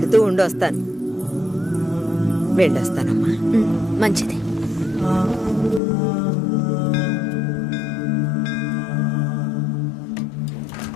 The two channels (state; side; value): drops out; right; at 5.8 s